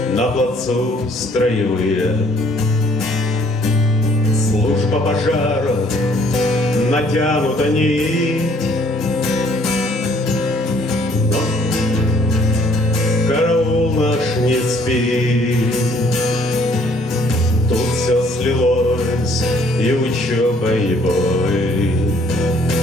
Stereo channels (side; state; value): both; normal; correlation 0.61